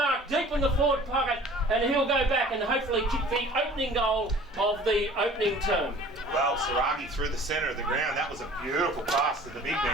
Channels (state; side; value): normal; both; correlation 0.47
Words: deep in the forward pocket, and he'll go back and hopefully kick the opening goal of the opening term. Well, Saragi through the centre of the ground. That was a beautiful pass to the big